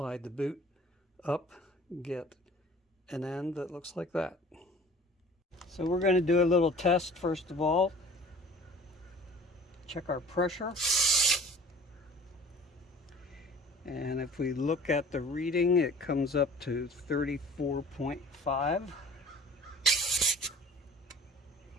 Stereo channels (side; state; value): both; normal; correlation 0.47